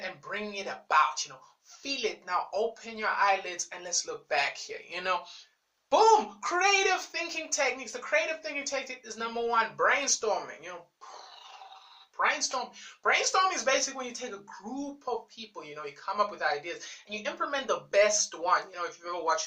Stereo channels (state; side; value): identical; both; correlation 1.00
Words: about. Feel it. Now open your eyelids and let's look back here. Boom! Creative thinking techniques. The creative thinking technique is number one, brainstorming. Brainstorming is basically when you take a group of people, you come up with ideas and you implement the best one. If you've ever